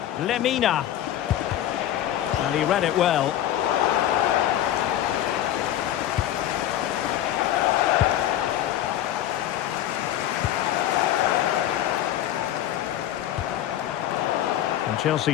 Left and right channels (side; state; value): right; quieter; 12.2 dB